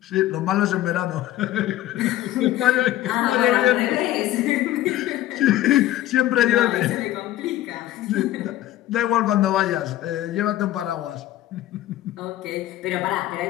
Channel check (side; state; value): right; quieter; 14.2 dB